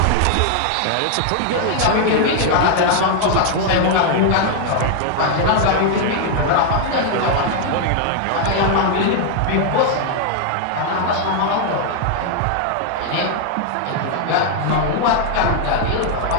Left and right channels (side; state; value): both; different; correlation 0.00